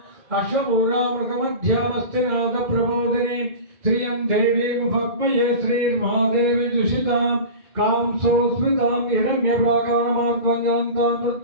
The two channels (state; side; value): late; left; 2.4 ms